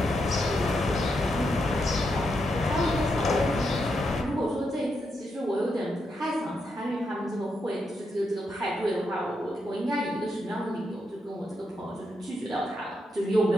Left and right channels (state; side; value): normal; both; correlation 0.82